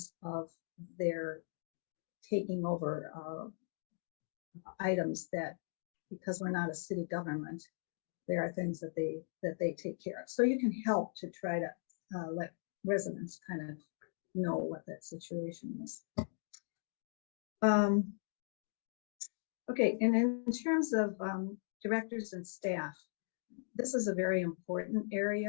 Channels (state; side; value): silent; right; digital silence